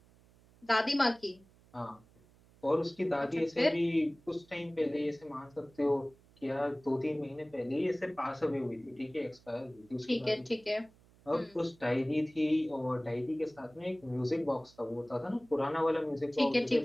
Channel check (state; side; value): noise; right; hum, 28 dB below the sound